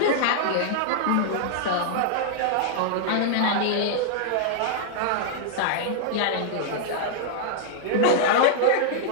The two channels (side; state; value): both; different; correlation -0.01